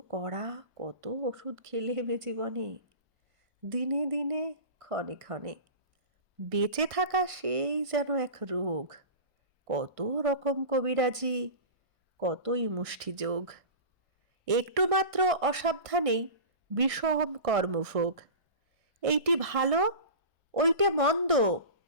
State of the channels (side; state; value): left; late; 1.6 ms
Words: কড়া কত ওষুধ খেলে বে জীবনে, দিনে দিনে ক্ষণে ক্ষণে। বেঁচে থাকা সেই যেন এক রোগ, কত রকম কবিরাজি, কতই মুষ্টিযোগ। একটু মাত্র অসাবধানেই বিষম কর্মভোগ। এইটি ভালো ওইটে মন্দ,